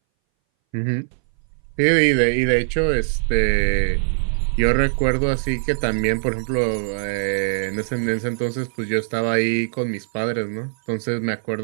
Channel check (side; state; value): left; silent; 61 dB below the other